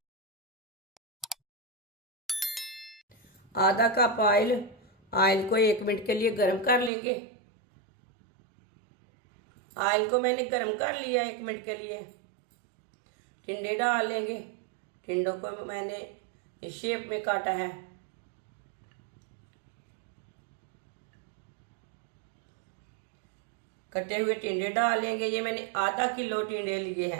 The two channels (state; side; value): drops out; left; at 6.9 s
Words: आधा कप ऑयल। ऑयल को 1 मिनट के लिए गर्म कर लेंगे। ऑयल को मैंने गर्म कर लिया 1 मिनट के लिए। टिंडे डाल लेंगे। टिंडों को मैंने इस शेप में काटा है। कटे हुए टिंडे डाल लेंगे। ये मैंने आधा किलो टिंडे लिए